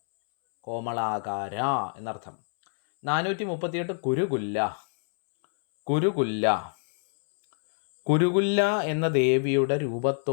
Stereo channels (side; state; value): right; silent; 61 dB below the other